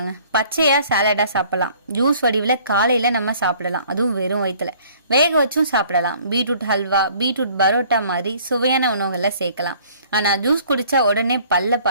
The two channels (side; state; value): both; inverted; correlation -0.56